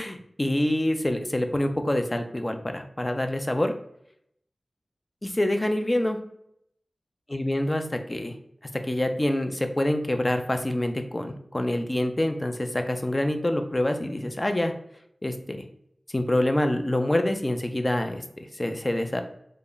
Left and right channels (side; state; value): both; normal; correlation 0.98